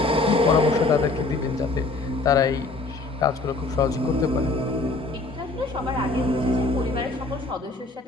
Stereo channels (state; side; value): quieter; right; 3.3 dB